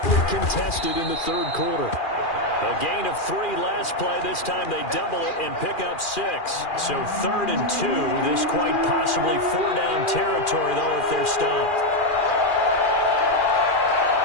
contested in the third quarter. A gain of 3 last play. This time they double it and pick up 6. So 3rd and 2. This quite possibly 4-down territory, though, if they're stopped.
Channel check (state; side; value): late; right; 2.4 ms